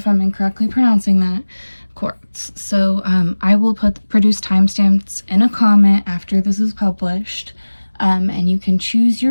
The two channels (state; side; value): inverted; both; correlation -1.00